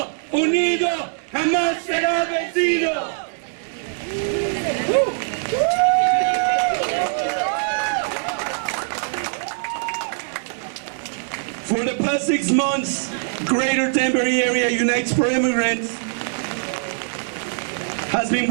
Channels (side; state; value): left; silent; 64 dB below the other